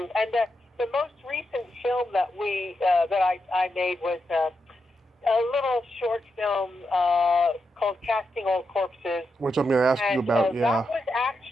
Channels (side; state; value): both; normal; correlation 0.85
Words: And the most recent film that I made was a little short film called Casting Old Corpses. Which I'm going to ask you about, yeah. That was